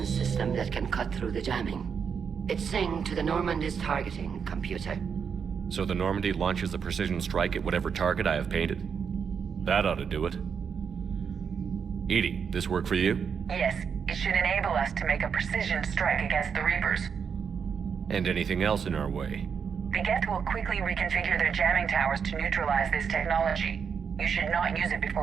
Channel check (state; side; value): quieter; left; 6.7 dB